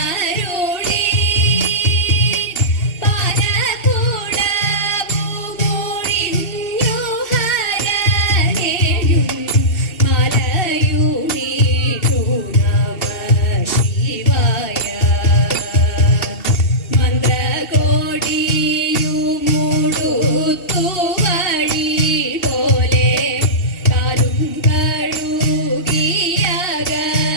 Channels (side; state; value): right; late; 2.8 ms